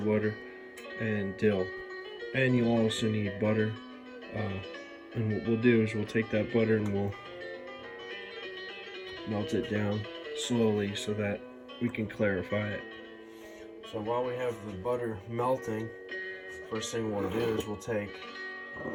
water, and dill. And you'll also need butter. And what we'll do is we'll take that butter and we'll melt it down slowly so that we can clarify it. So while we have the butter melting, first thing we'll do is we'll take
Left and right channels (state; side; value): identical; both; correlation 1.00